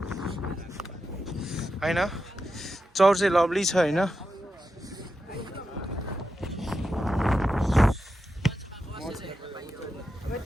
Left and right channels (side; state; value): both; normal; correlation 0.89